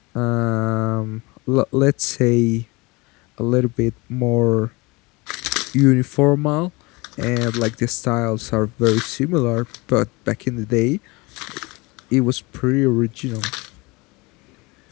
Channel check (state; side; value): quieter; right; 25.0 dB